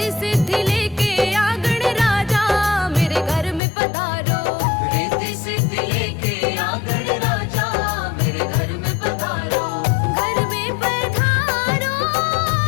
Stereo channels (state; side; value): drops out; right; at 3.6 s